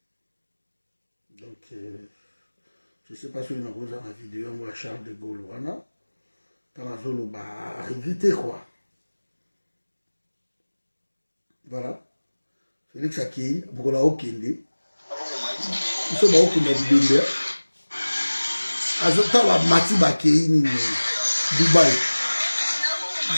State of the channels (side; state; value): both; inverted; correlation -1.00